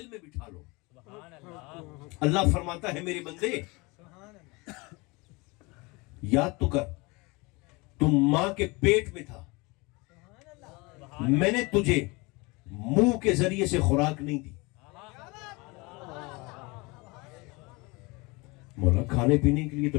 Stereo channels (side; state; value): right; quieter; 25.9 dB